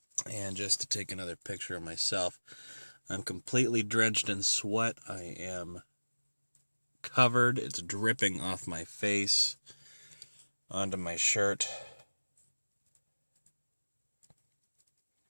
And just to take another picture of myself, I'm completely drenched in sweat. I am covered. It's dripping off my face onto my shirt.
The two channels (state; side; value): inverted; both; correlation -1.00